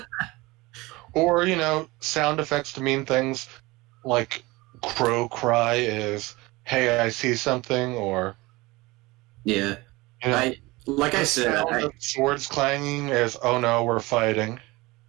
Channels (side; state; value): left; quieter; 22.0 dB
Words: Or sound effects to mean things like crow cry is, hey, I see something, or yeah. Like I said, swords clanging is, oh no, we're fighting.